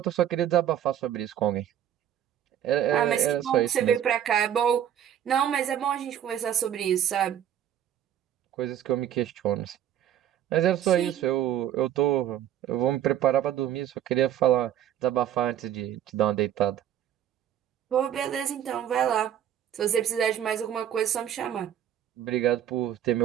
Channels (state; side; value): quieter; left; 10.6 dB